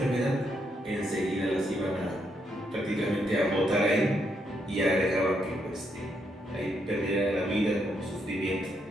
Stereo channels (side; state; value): both; normal; correlation 0.78